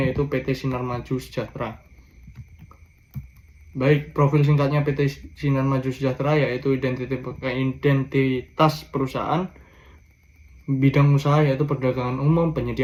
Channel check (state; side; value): identical; both; correlation 1.00